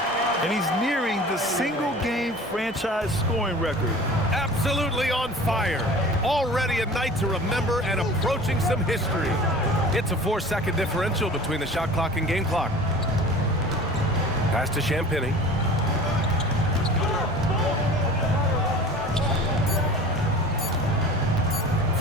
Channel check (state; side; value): normal; both; correlation 0.41